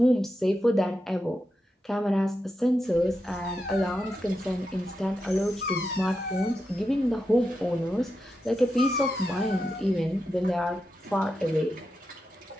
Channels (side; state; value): both; normal; correlation 0.88